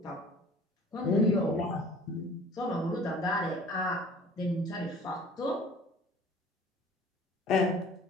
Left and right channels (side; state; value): both; normal; correlation 0.48